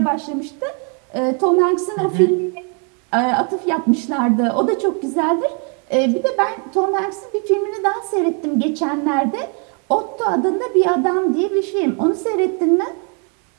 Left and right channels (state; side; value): quieter; left; 38.9 dB